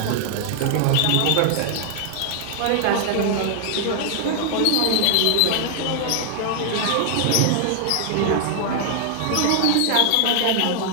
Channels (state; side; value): different; both; correlation 0.00